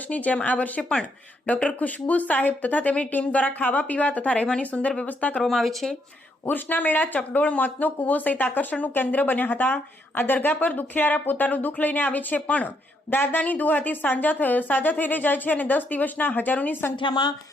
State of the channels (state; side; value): normal; both; correlation 0.75